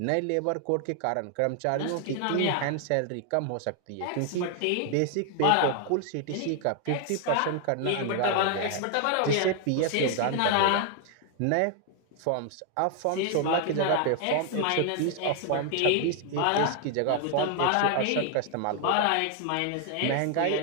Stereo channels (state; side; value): different; both; correlation 0.00